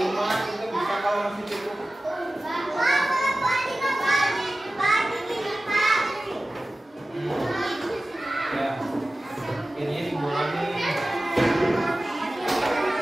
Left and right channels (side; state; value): both; normal; correlation 0.96